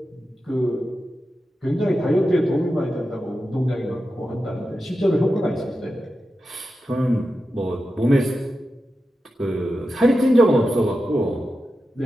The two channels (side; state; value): both; normal; correlation 0.91